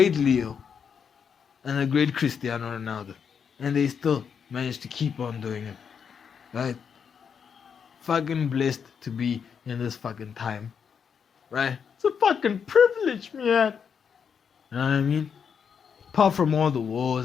Leo and the great Cristiano Ronaldo. And they still managed to keep on doing it, right? Fucking blessed to be in this fucking time, right? It's a fucking privilege, man. You know what I mean? Apart from all the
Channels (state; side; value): quieter; right; 6.9 dB